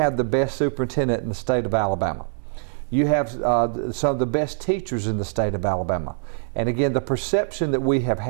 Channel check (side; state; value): left; silent; 62 dB below the other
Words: the best superintendent in the state of Alabama. You have some of the best teachers in the state of Alabama. And again, the perception that we have